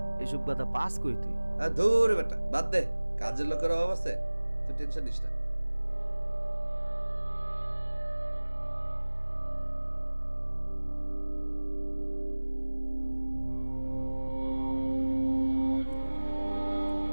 এসব কথা পাস কই তুই? ধুর বেটা, বাদ দে, কাজের লোকের অভাব আছে, তুই টেনশন নিস না।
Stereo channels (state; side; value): inverted; both; correlation -1.00